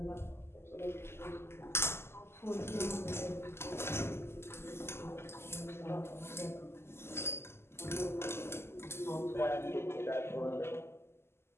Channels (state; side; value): late; right; 0.12 ms